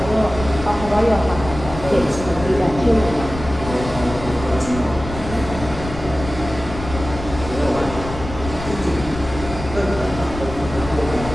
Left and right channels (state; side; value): noise; left; rumble, 10 dB below the sound